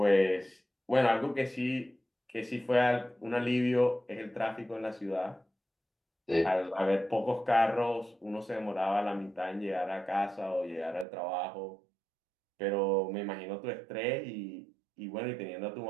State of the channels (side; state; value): left; drops out; at 11.1 s